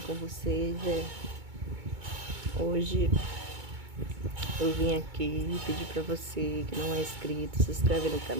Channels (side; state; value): left; late; 2.2 ms